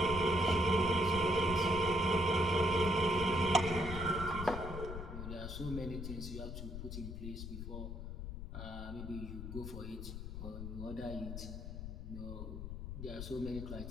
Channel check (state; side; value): noise; left; rumble, 7 dB below the sound